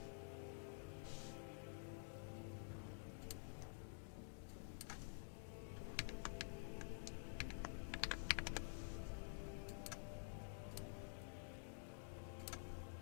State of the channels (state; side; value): silent; right; digital silence